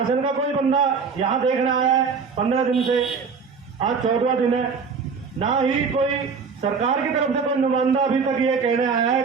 का कोई बंदा यहाँ देखने आया है 15 दिन से, आज 14वां दिन है, ना ही कोई सरकार की तरफ से कोई नुमाइंदा अभी तक ये कहने आया है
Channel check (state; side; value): quieter; left; 5.4 dB